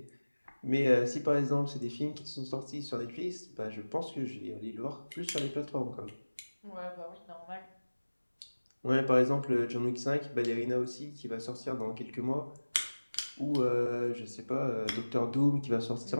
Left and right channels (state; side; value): inverted; both; correlation -1.00